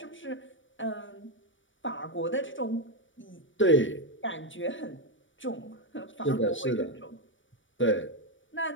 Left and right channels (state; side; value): late; right; 0.56 ms